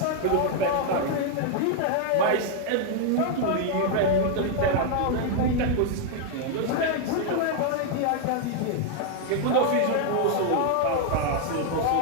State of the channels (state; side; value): different; both; correlation 0.00